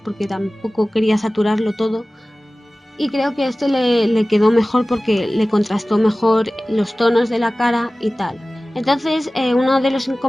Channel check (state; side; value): normal; both; correlation 0.97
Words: tampoco quería saturarlo todo, y creo que este le quedó mejor porque le contrastó mejor los tonos de la cara y tal. Entonces, uno de los